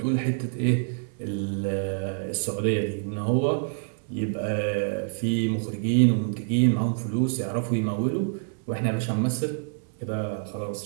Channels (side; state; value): left; silent; digital silence